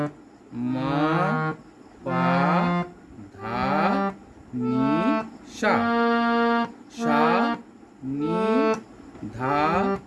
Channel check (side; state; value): both; identical; correlation 1.00